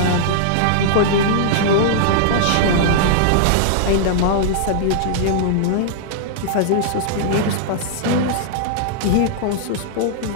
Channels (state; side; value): different; both; correlation -0.01